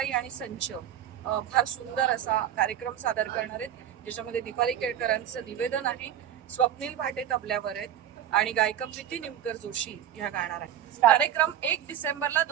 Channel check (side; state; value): left; quieter; 10.5 dB